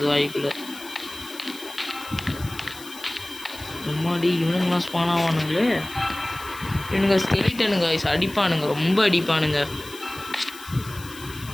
வாய்க்குள்ள. முன்னாடி இவனுங்களாம் ஸ்பான் ஆவானுங்களே. இவனுங்க ஸ்கெலிட்டனுங்க அடிப்பானுங்க, ரொம்ப அடிப்பானுங்க.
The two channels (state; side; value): noise; left; hiss, 16 dB below the sound